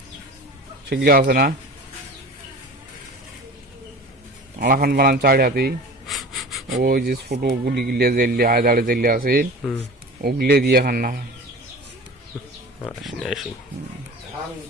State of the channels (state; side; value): normal; both; correlation 0.37